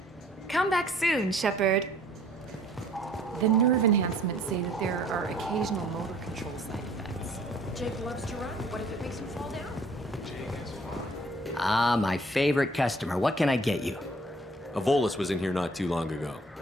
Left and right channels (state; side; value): normal; both; correlation 0.56